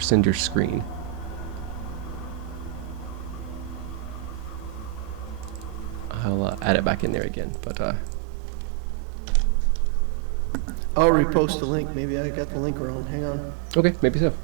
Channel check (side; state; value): left; drops out; at 7.2 s